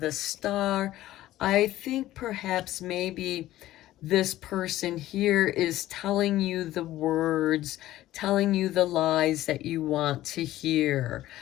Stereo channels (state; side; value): quieter; right; 14.9 dB